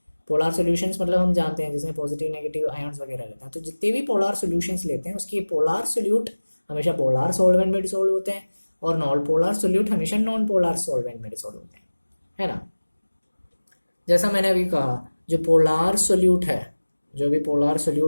पोलार सॉल्यूशंस मतलब हम जानते हैं जिसमें पॉजिटिव नेगेटिव आयन्स वगैरह रहते हैं, तो जितने भी पोलार सॉल्यूशंस लेते हैं उसके पोलार सोल्यूट हमेशा पोलार सॉल्वेंट में डिसॉल्व होते हैं और नॉन पोलार सोल्यूट हमेशा नॉन पोलार सॉल्वेंट में डिसॉल्व होते हैं, है ना. जैसा मैंने अभी कहा, जो पोलार सोल्यूट है, जो भी पोलार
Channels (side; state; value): both; inverted; correlation -1.00